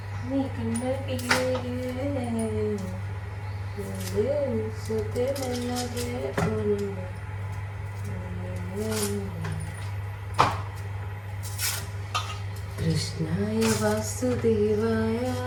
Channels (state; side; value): identical; both; correlation 1.00